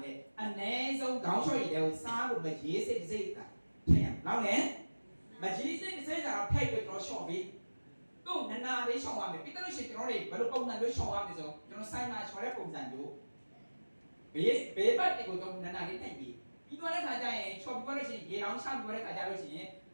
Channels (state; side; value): inverted; both; correlation -1.00